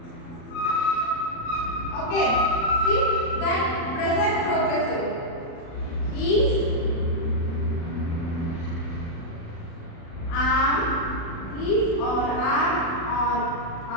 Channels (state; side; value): late; right; 36 ms